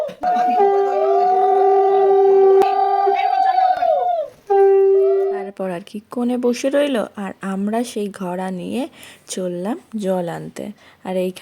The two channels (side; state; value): both; identical; correlation 1.00